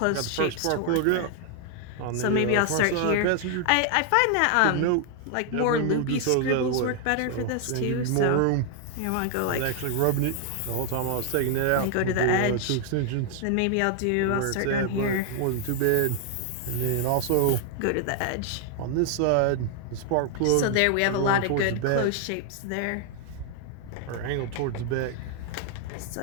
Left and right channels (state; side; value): different; both; correlation 0.00